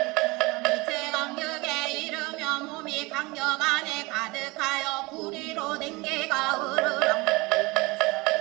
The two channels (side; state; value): left; quieter; 24.0 dB